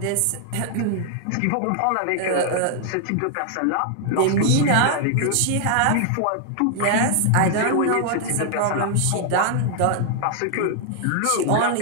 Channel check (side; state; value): both; different; correlation 0.00